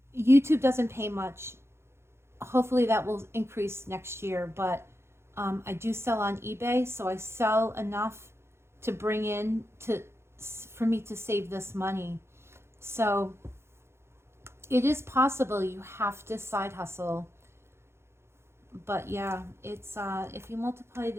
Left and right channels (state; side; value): late; left; 0.12 ms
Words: YouTube doesn't pay much. Hopefully that will increase next year, but I do sell on eBay, so I sell enough to bring in for me to save this money. So it is possible. You have to side hustle. But yeah, it's if you multiply